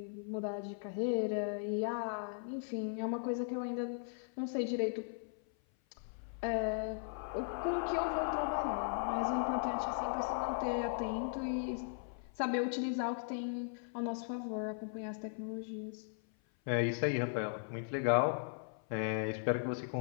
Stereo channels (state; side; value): silent; right; 53 dB below the other